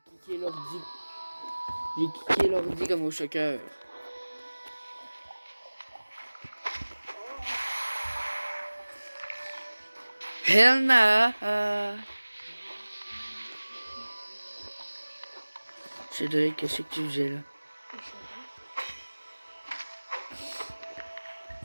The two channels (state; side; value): inverted; both; correlation -1.00